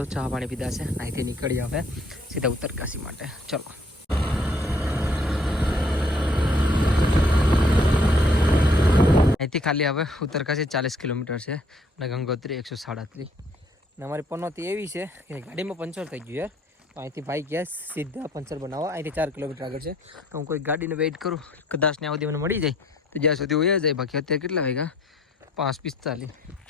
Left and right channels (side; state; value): both; normal; correlation 0.62